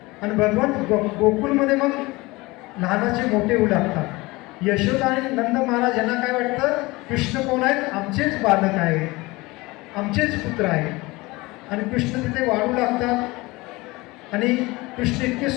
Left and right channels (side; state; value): right; quieter; 22.1 dB